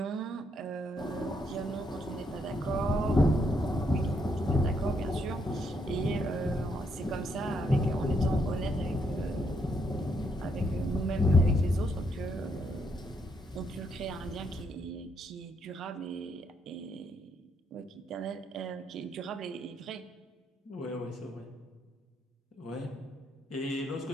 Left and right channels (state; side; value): normal; both; correlation 0.75